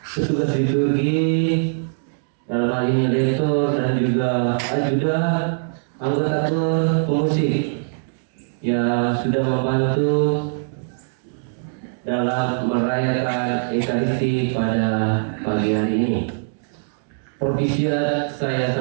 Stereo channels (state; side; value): silent; left; digital silence